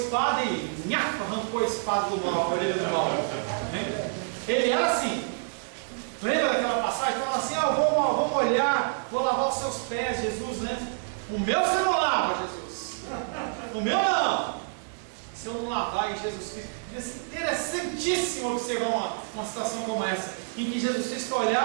e arrancou a espada do mal, a orelha do mal. Ele era assim. Lembra daquela passagem? Falava assim: vou molhar, vou lavar os seus pés, Jesus, né? O meu você não lava, Jesus. O meu não. Se eu não lavar em Jesus Cristo. Devia ser interessantíssimo observar uma situação como essa, em que Jesus Cristo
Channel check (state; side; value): silent; left; 58 dB below the other